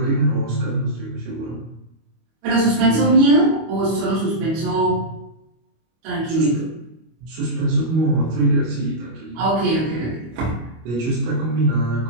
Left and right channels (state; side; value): late; left; 25 ms